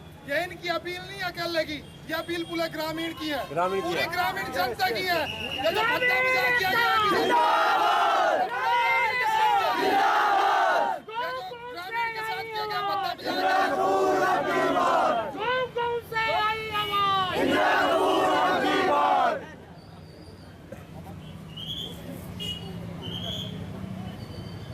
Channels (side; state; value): both; identical; correlation 1.00